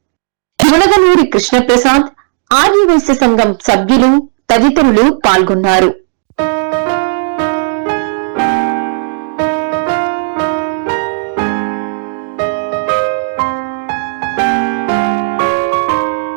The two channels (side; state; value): left; silent; 61 dB below the other